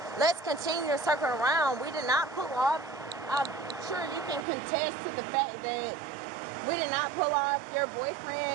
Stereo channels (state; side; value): drops out; left; at 4.5 s